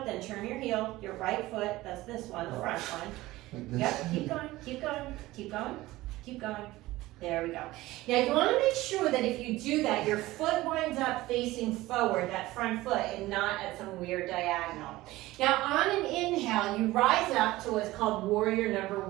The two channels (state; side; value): quieter; left; 18.0 dB